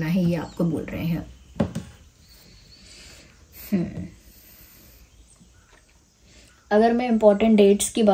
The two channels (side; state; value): both; identical; correlation 1.00